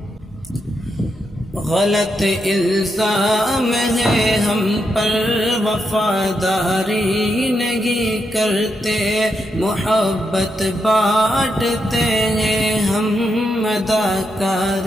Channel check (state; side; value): normal; both; correlation 0.83